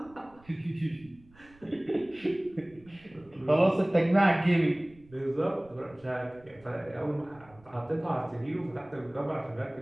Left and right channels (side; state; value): right; noise; rumble, 27 dB below the sound